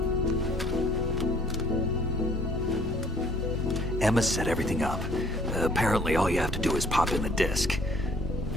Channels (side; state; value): both; normal; correlation 0.58